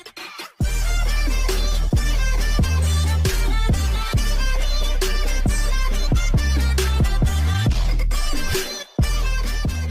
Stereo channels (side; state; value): both; identical; correlation 1.00